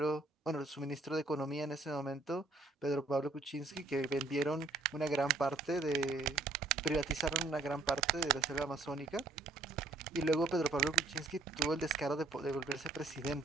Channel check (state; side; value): quieter; left; 3.4 dB